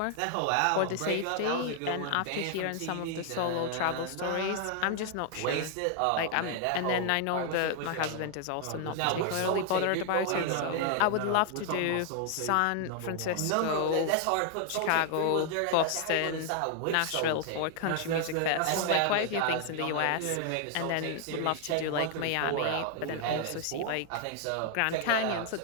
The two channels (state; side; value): different; both; correlation 0.00